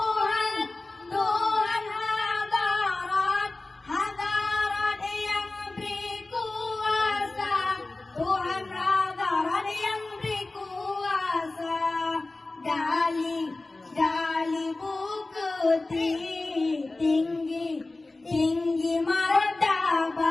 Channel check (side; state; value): right; quieter; 3.1 dB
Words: hadarat yang beri kuasa, Tuhan hadarat yang beri kuasa, dali bukti tinggi